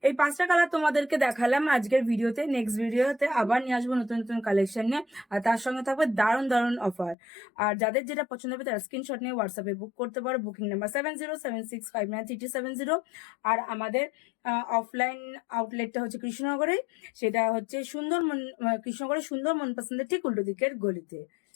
এই পাঁচটা কালার তোমাদেরকে দেখালাম আজকের ভিডিওতে। নেক্সট ভিডিওতে আবার নিয়ে আসবো নতুন নতুন কালেকশন নিয়ে, আর তার সঙ্গে থাকবে দারুণ দারুণ অফার। আর যাদের যেটা পছন্দ হবে তারা স্ক্রিনশট নিয়ে হোয়াটসঅ্যাপে বুক করতে পারো, বুকিং নাম্বার 7076593270। আর আমাদের অফলাইন আউটলেটটা হচ্ছে কৃষ্ণনগরে, সেটা হচ্ছে কৃষ্ণনগরের সুন্দর মন পছন্দের ঠিক উল্টো দিকের গলিতে।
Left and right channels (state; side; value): drops out; right; at 7.2 s